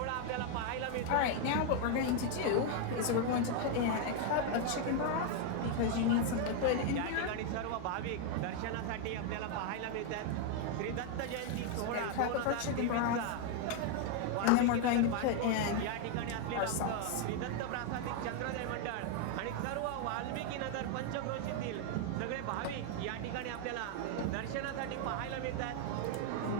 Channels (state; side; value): different; both; correlation 0.00